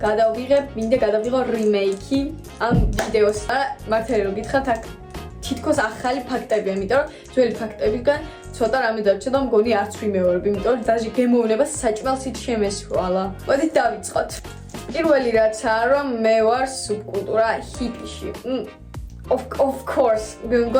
მინდა გადავიღო remake ამ ვიდეოს. მართალი რომ გითხრათ, აქ თითქოს ახალი ფაქტებია, იმიტომ რომ ძველი ფაქტებიდან ცოტა რამე დარჩა და მგონი არც ვიმეორებ, იმიტომ რომ დაჟე გემოვნება საჭმელსით შემესრვალა. მოდით დავიწყოთ. პირველი რაცაა, რომ მე ვარ სუბკულტურა ჰიპიში. Of course,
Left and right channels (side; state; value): both; identical; correlation 1.00